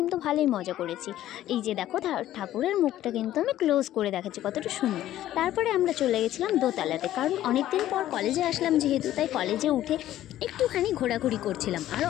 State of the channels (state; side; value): quieter; right; 13.2 dB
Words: ভালোই মজা করেছি। এই যে দেখো ঠাকুরের মুখটা কিন্তু আমি ক্লোজ করে দেখাচ্ছি, কতটা সুন্দর। তারপরে আমরা চলে গেছিলাম দোতলাতে, কারণ অনেক দিন পর কলেজে আসলাম যেহেতু, তাই কলেজে উঠে একটুখানি ঘোরাঘুরি করছিলাম, আর